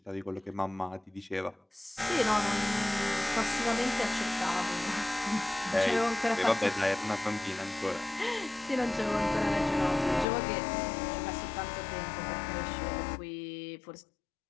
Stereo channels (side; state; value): right; drops out; at 10.2 s